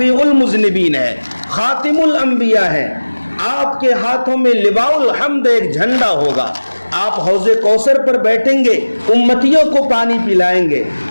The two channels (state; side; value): inverted; both; correlation -1.00